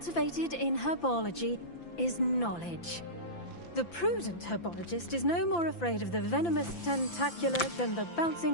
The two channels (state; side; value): late; right; 5.9 ms